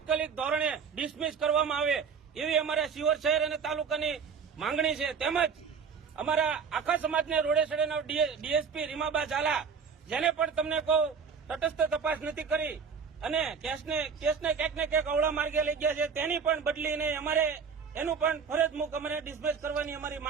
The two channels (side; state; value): left; quieter; 6.1 dB